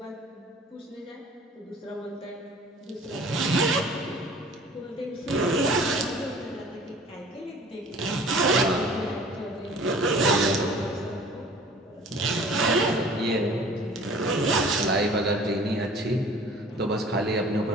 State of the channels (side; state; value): both; normal; correlation 0.48